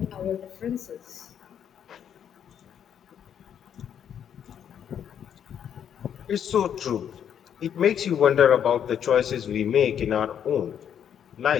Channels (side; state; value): right; quieter; 8.9 dB